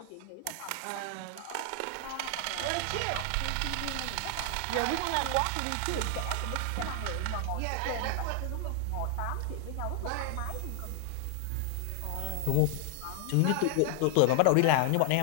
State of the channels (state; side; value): different; both; correlation 0.00